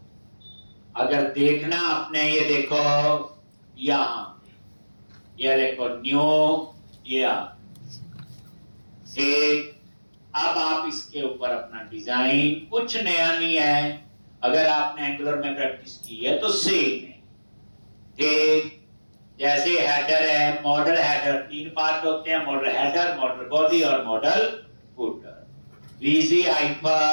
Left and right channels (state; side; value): inverted; both; correlation -1.00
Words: अगर देखना आपने, ये देखो यहाँ, ये देखो न्यू, ये एक अब आप इसके ऊपर अपना डिजाइन, कुछ नया नहीं है, अगर आपने एंगुलर में प्रैक्टिस की है तो सेम है। ठीक जैसे हेडर है, मॉडल हेडर, 3 पार्ट होते हैं, मॉडल हेडर, मॉडल बॉडी और modal footer. VG